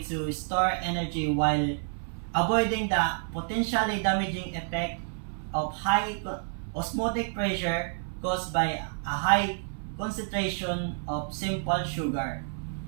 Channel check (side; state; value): left; silent; 58 dB below the other